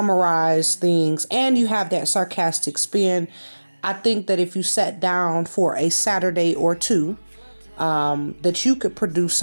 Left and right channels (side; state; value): both; inverted; correlation -1.00